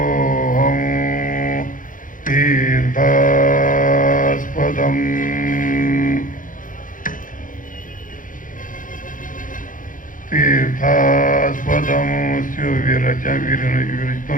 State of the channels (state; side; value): late; right; 0.39 ms